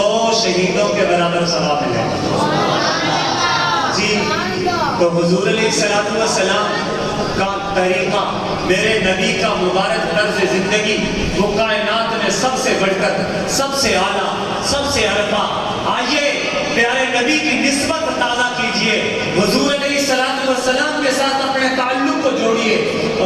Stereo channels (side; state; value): both; identical; correlation 1.00